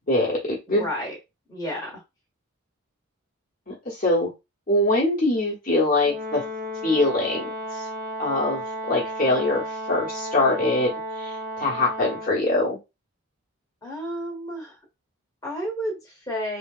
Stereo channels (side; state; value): both; normal; correlation 0.12